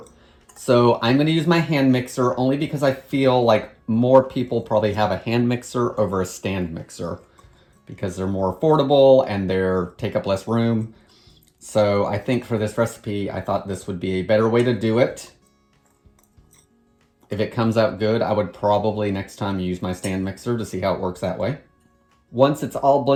So I'm going to use my hand mixer only because I feel like more people probably have a hand mixer over a stand mixer, because they're more affordable and they take up less room. So I think for this recipe, I thought this would be a better way to do it. If it comes out good, I would probably next time use my stand mixer to see how it works that way. Once it's all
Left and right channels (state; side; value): identical; both; correlation 1.00